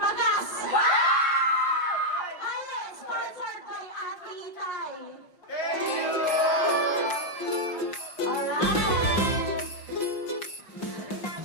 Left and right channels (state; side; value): late; right; 5.6 ms